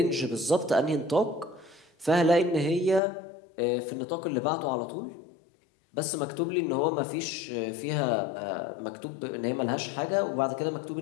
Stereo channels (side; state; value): right; drops out; at 3.0 s